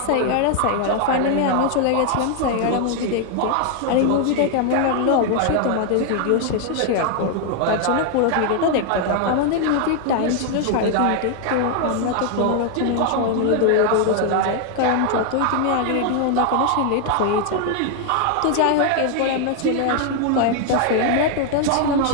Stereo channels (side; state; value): both; different; correlation 0.00